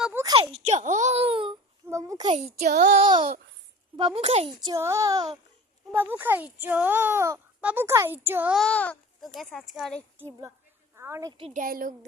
খাইছো বাবু খাইছো বাবু খাইছো বাবু খাইছো বাবু খাইছো তো গাইস আজকে অনেকটি ডায়লগ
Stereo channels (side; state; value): both; normal; correlation 0.39